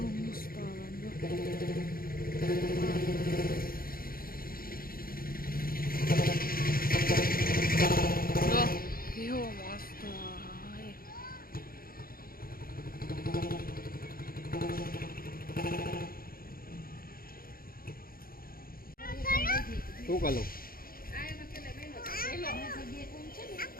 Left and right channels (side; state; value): right; late; 0.42 ms